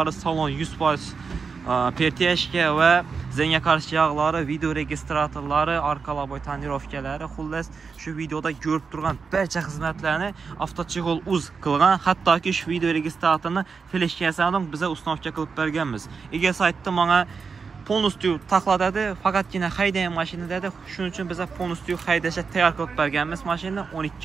salon 100% pertiyashka va zenga qarshi yog'lari, video registratorlari, arka laboy tonirovkalari, xullas shu videoda ko'rib turgan barcha xizmatlarni avtochig'ol uz qilgan. Hattoki shu video registratorni fleshkasini biza uстановка qilib berganmiz. Ega saytda menga полностью taqladadi, faqatgina haydagan mashina dedi. Shuning uchun biza полностью haydashga tayyor qilib berganmiz mashinani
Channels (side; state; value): left; quieter; 5.2 dB